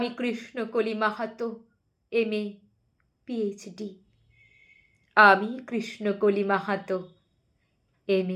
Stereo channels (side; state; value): both; identical; correlation 1.00